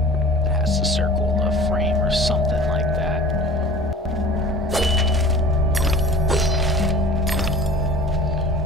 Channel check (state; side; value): normal; both; correlation 0.42